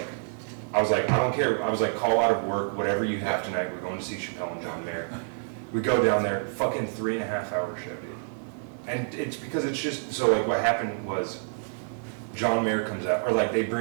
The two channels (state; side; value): silent; left; digital silence